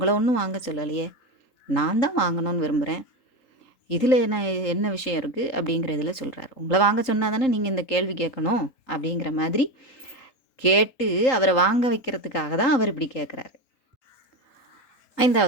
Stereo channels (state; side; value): late; right; 3.8 ms